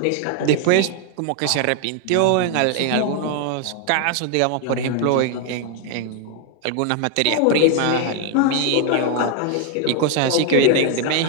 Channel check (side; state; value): both; different; correlation 0.01